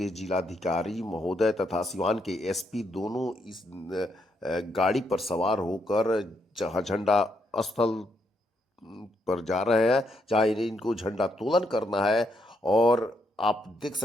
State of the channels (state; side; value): normal; both; correlation 0.77